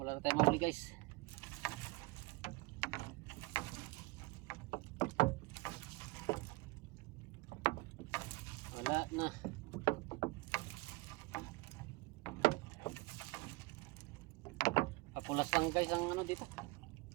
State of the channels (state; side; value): quieter; left; 23.5 dB